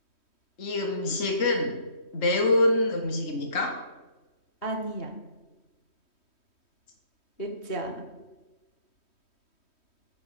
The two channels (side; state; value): right; late; 3.1 ms